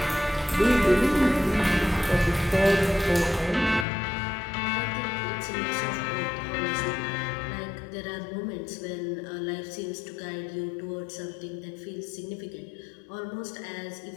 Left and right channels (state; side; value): drops out; right; at 3.9 s